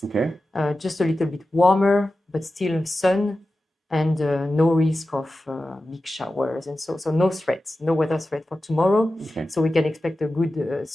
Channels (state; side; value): normal; both; correlation 0.93